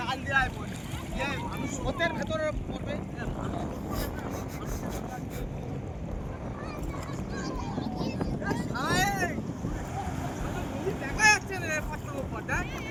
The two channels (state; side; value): identical; both; correlation 1.00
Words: দেয় বলে মানুষ স্রোতের ভেতরে পড়বে। দেখা যাচ্ছে না পাথরের উপর।